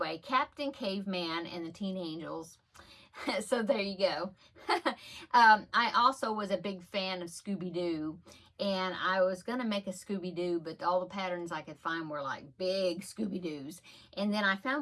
Captain Caveman and the Teen Angels. So there you go. I also was a big fan of Scooby-Doo, and I was going to make a Scooby-Doo, but all the patterns I could find were like big Scooby-Doos. And then I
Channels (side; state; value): both; identical; correlation 1.00